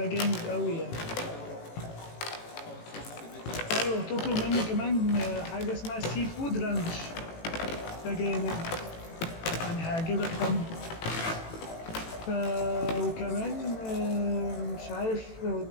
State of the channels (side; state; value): right; late; 18 ms